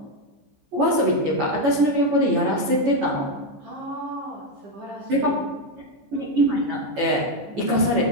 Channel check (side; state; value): left; late; 14 ms